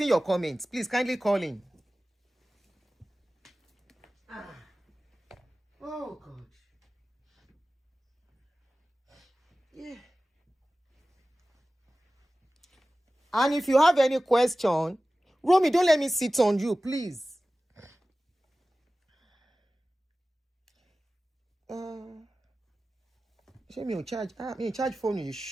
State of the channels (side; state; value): both; normal; correlation 0.96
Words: your comments. Please kindly call in. Oh God. Yeah. And if you have any question, Romy, don't let me sit on you, please. Me charge phone you